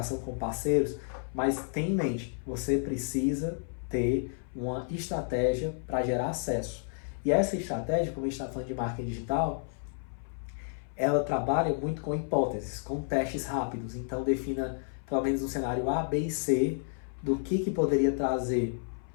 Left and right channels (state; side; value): silent; right; 57 dB below the other